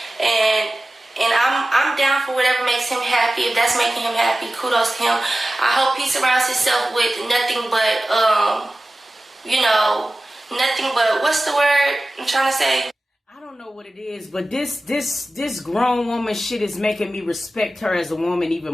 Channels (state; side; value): normal; both; correlation 0.95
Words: and I'm down for whatever makes him happy. If that's making him happy, kudos to him. I hope he surrounds himself with nothing but nothing but, what's the word I'm trying to say? I don't know what it is, but this grown woman shit is making me respect her as a woman even